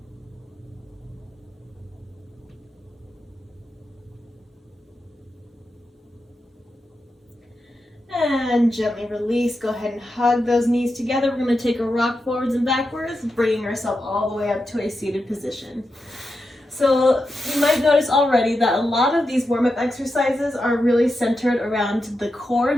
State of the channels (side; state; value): both; normal; correlation 0.88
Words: And gently release. Go ahead and hug those knees together. We're going to take a rock forwards and backwards, bringing ourselves all the way up to a seated position. So you might notice already that a lot of these warm-up exercises are really centered around the core,